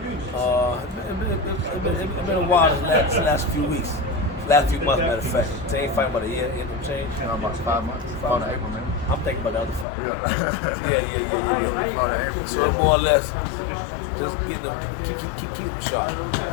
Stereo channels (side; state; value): right; drops out; at 9.9 s